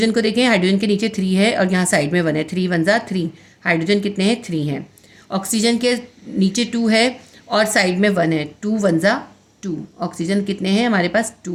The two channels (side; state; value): both; identical; correlation 1.00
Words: को देखें, हाइड्रोजन के नीचे 3 है और यहाँ साइड में 1 है, 3 1 जा 3। हाइड्रोजन कितने हैं, 3 हैं। ऑक्सीजन के नीचे 2 है और साइड में 1 है, 2 1 जा 2। ऑक्सीजन कितने हैं हमारे पास,